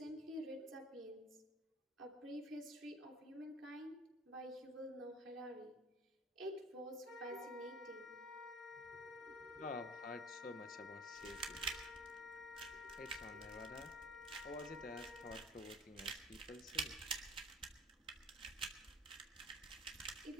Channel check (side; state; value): both; normal; correlation 0.45